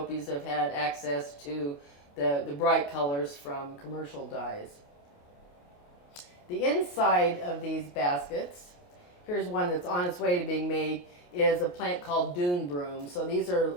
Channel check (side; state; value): right; late; 28 ms